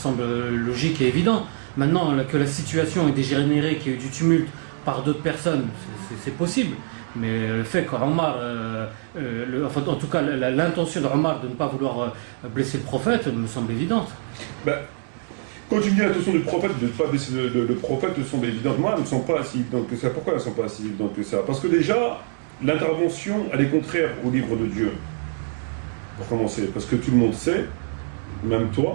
logique et évident. Maintenant que la situation est dégénérée, qu'il y ait eu du tumulte par d'autres personnes, c'est possible. Mais le fait qu'Omar, en tout cas l'intention d'Omar de ne pas vouloir blesser le prophète me semble évidente. Quand tu me dis l'intention du prophète de ne pas blesser le prophète, me semble évidente. Moi, elle ne me semble pas si évidente que ça. Pourquoi elle ne me semble pas si évidente que ça? Parce que déjà, l'intervention, elle est contraire au livre de Dieu. Pour commencer, parce que tout le monde sait, même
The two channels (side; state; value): left; silent; digital silence